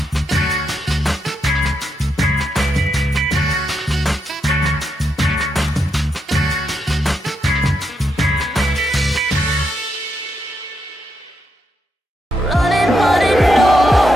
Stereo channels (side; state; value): both; normal; correlation 0.82